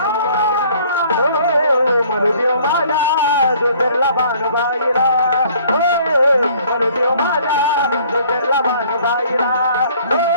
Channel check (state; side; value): inverted; both; correlation -0.57